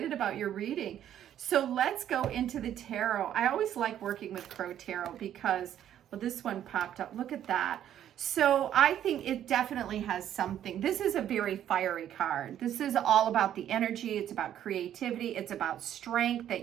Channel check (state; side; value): quieter; left; 10.8 dB